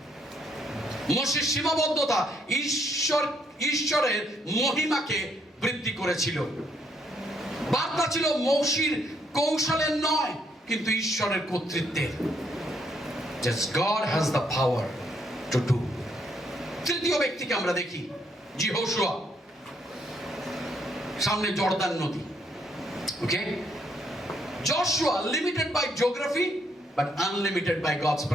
মোশের সীমাবদ্ধতা ঈশ্বরের মহিমাকে বৃদ্ধি করেছিল। বার্তা ছিল মোশির কৌশলের নয়, কিন্তু ঈশ্বরের কর্তৃত্বের। Just God has the power to do. তৃতীয় ব্যক্তিকে আমরা দেখি, যহোশুয়া। সামনে জর্দান নদী। ওকে, Joshua limited by geography but unlimited by God's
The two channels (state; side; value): normal; both; correlation 0.72